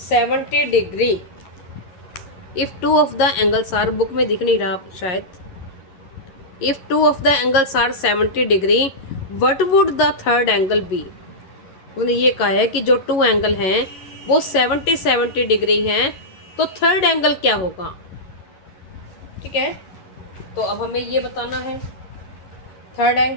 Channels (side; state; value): right; late; 11 ms